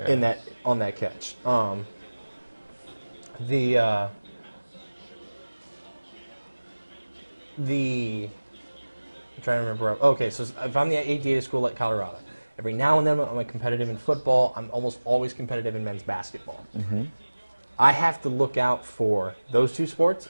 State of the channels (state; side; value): inverted; both; correlation -1.00